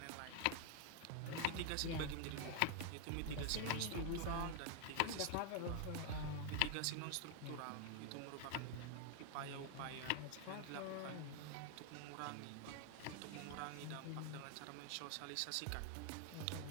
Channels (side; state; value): both; different; correlation 0.00